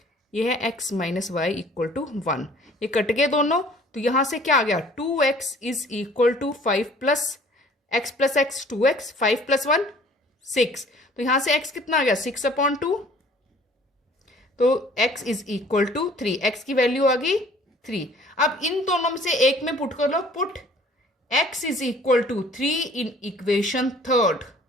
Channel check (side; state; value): both; normal; correlation 0.53